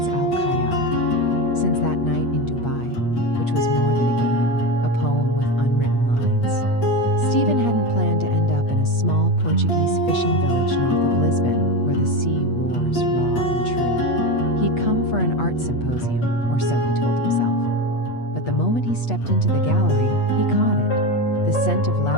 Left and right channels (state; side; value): late; right; 8.4 ms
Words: Al-Khayyal, since that night in Dubai, which was more than a game, a poem with unwritten lines. Stephen hadn't planned to end up in a small Portuguese fishing village north of Lisbon, where the sea roars raw and true. He'd come for an art symposium, or so he told himself. But the moment he stepped into the gallery, he caught it. The scent of